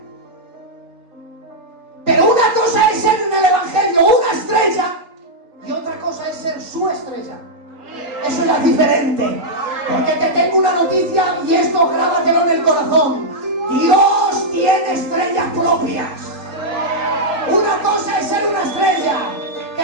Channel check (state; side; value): late; left; 3.8 ms